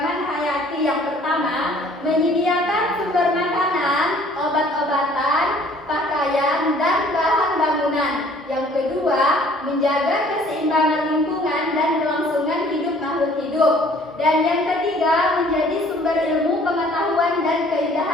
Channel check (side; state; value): both; normal; correlation 0.55